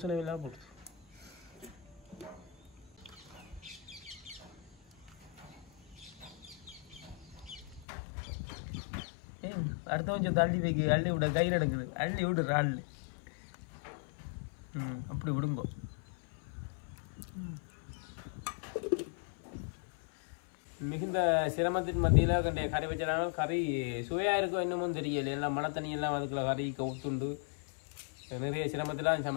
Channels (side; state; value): right; drops out; at 7.9 s